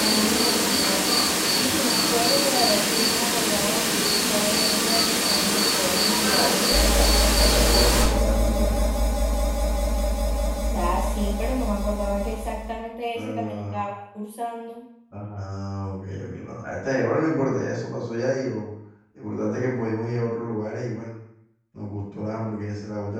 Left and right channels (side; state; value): both; identical; correlation 1.00